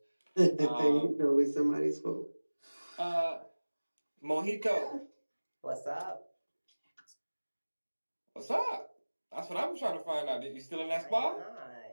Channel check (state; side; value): inverted; both; correlation -1.00